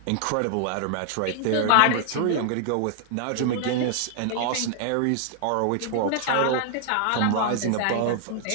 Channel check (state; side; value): different; both; correlation -0.01